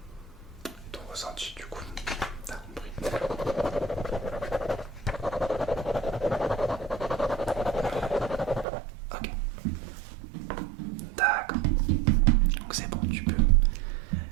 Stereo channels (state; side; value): drops out; left; at 8.7 s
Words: Ton ressenti du coup. T'as compris. Ok. D'accord. Donc c'est bon, tu peux